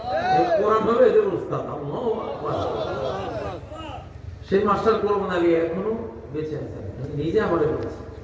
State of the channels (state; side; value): identical; both; correlation 1.00